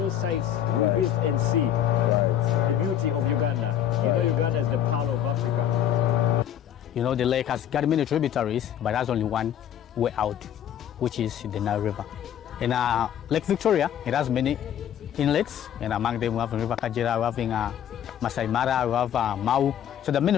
sites we visit and see the beauty of Uganda. You know, Uganda is the pearl of Africa. You know, the lake has got many tributaries, but there's only one way out, which is the Nile River. In Lake Victoria, it has many inlets, and among them we have River Kajira, we have Masai Mara, we have Mau. So the many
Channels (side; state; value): right; quieter; 10.1 dB